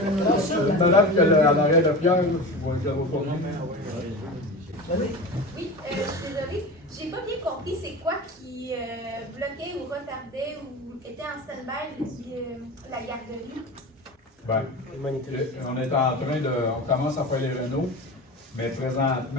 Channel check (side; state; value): both; normal; correlation 0.30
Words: Madame qui a l'arrêt de Pierre, je vais pas bien. Oui, je suis désolée. J'ai pas bien compris c'est quoi qui bloquait ou retardait ou était en stand-by la garderie. Ben, on est en train de. On commence à faire les rénaux, mais